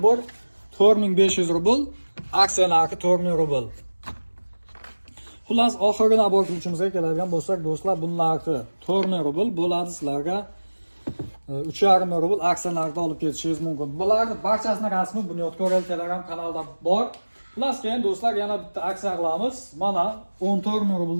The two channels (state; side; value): inverted; both; correlation -1.00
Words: bor. 4500 rubl, aksiya narxi 4000 rubl. Xullas, oxirgi nabor qiluvchimizga keladigan bo'lsak, do'stlar, buning narxi 4000 rubl bo'ladi. Sizlarga 3,5 ming rubl aksiya narxida olib ketishingiz mumkin. Bularning barchasining rasmi Bunyodkor Telegram kanalida bor. Xullas, keyin do'stlar, yana bitta aksiya qilamiz. Mana 14 ming